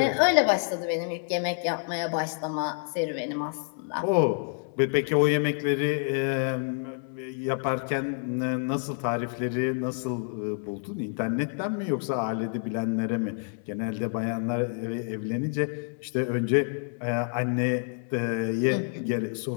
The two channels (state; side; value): silent; right; 55 dB below the other